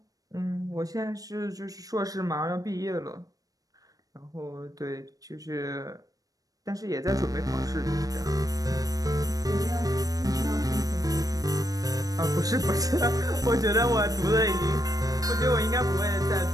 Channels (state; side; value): late; left; 0.17 ms